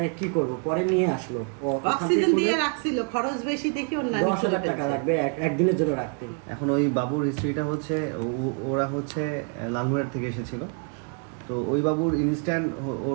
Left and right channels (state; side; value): quieter; left; 39.8 dB